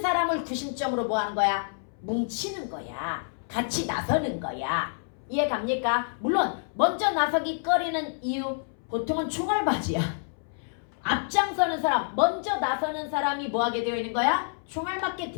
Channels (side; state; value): right; silent; 59 dB below the other